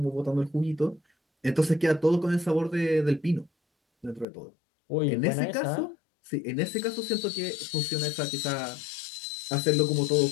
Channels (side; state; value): right; drops out; at 4.2 s